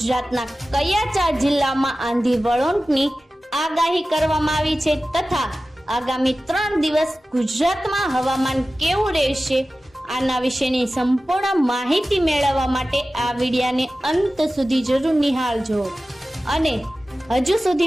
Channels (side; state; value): both; normal; correlation 0.96